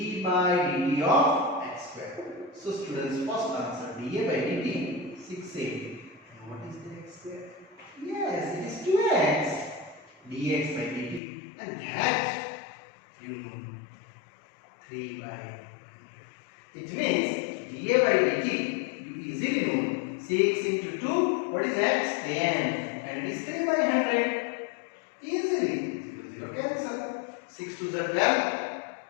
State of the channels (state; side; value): drops out; right; at 11.2 s